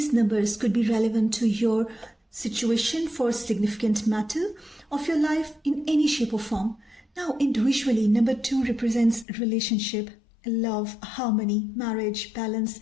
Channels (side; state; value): right; drops out; at 9.2 s